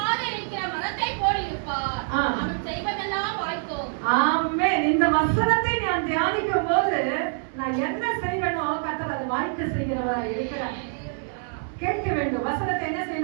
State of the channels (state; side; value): silent; left; 61 dB below the other